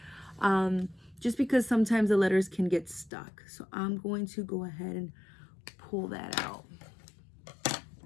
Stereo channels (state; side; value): drops out; right; at 3.1 s